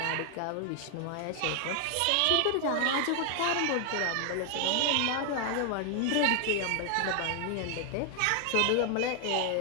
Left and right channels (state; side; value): different; both; correlation 0.01